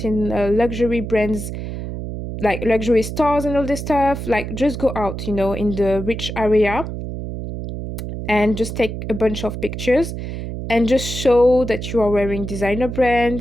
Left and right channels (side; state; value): right; noise; hum, 6 dB below the sound